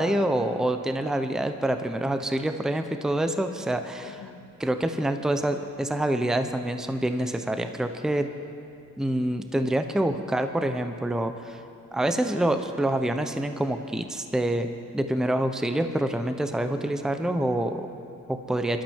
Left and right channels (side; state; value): both; normal; correlation 0.85